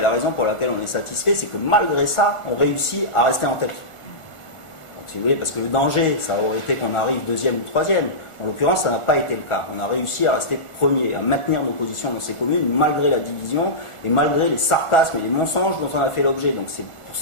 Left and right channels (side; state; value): right; late; 1.4 ms